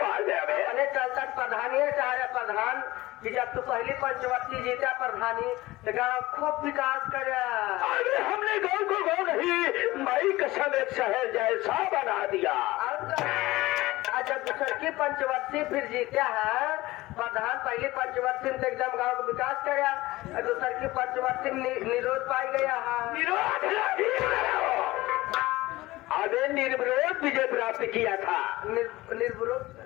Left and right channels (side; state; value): right; quieter; 18.8 dB